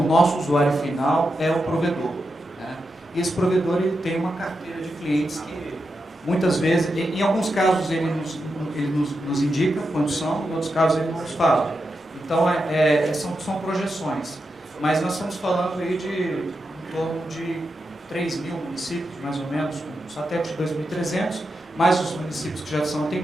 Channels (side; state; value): both; normal; correlation 0.87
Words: nosso usuário final é o provedor. Né? E esse provedor ele tem uma carteira de clientes que, muitas vezes, em alguns casos ele nos indica quando são, em outros casos ele não nos fala. Então, são projeções. Mas nós estamos falando aí de em torno de 3 mil municípios, mais ou menos, com satélite de 2.300, mais os municípios que já são